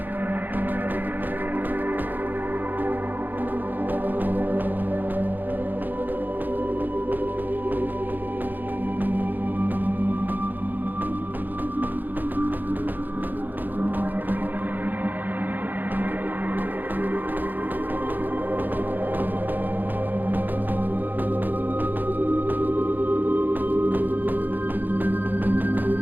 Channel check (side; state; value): left; late; 0.087 ms